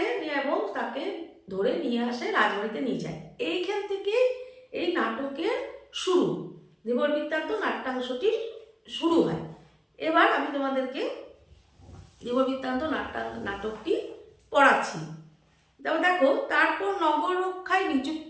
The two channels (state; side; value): identical; both; correlation 1.00